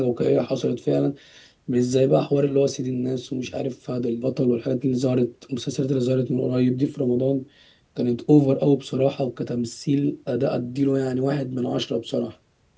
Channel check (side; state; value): both; identical; correlation 1.00